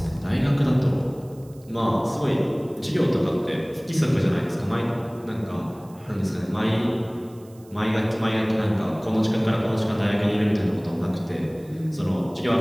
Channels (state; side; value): noise; right; hiss, 28 dB below the sound